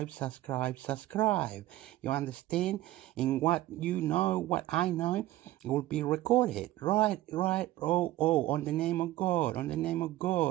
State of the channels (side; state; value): left; quieter; 15.9 dB